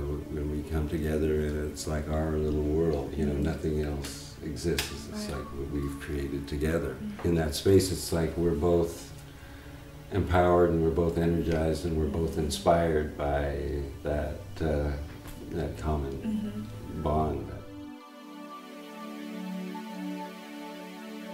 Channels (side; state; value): both; identical; correlation 1.00